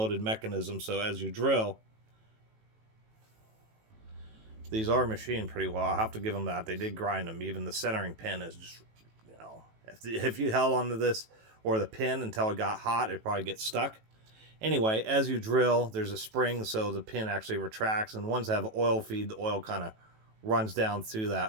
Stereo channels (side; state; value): left; late; 18 ms